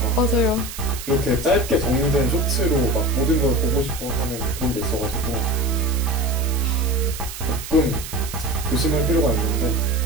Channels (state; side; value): noise; right; hiss, 11 dB below the sound